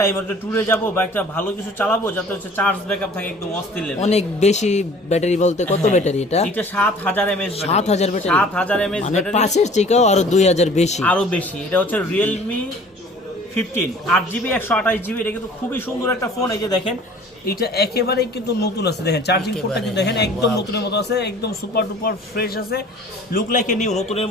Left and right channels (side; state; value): both; normal; correlation 0.49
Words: একটা ট্যুরে যাব বা একটা ভালো কিছু চালাবো, যাতে হচ্ছে চার্জ ব্যাকআপ থাকে একদম অস্থির লেভেল। অনেক বেশি ব্যাটারি বলতে কত ব্যাটারি এটা? এটা 7000 mAh। 7000 ব্যাটারি? 7000 mAh মানে ব্যাটারি, 5 এর থেকেও আরো 2000 বেশি। আরো বেশি। এটা হচ্ছে রিয়েলমি 15 8GB 128GB। এটা কিন্তু খুবই সুন্দর একটা ফোন। এই যে দেখেন এটা একেবারেই কিন্তু নতুন আছে, দেখেন চার্জিং পোর্টটা কিন্তু দেখেন একদম নতুনের মতো আছে, একদম সুপার ডুপার ফ্রেশ আছে, লুক লাইক এ নিউ, নতুনের